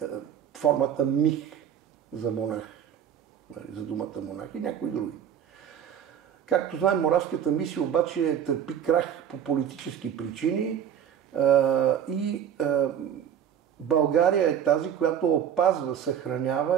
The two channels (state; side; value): quieter; left; 9.2 dB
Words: формата мих за монах, за думата монах и някои други. Както знаем, Моравската мисия обаче търпи крах по политически причини и България е тази, която опазва,